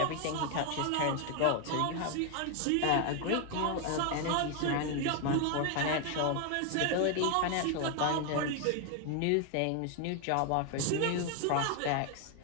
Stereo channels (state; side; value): different; both; correlation 0.00